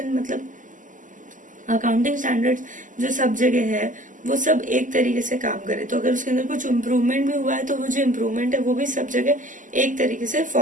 मतलब अकाउंटिंग स्टैंडर्ड्स जो सब जगह है वो सब एक तरीके से काम करे, तो अगर उसके अंदर कुछ इम्प्रूवमेंट भी हुआ है तो वो जो इम्प्रूवमेंट है वो भी सब जगह एक तरीके से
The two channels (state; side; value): late; left; 0.38 ms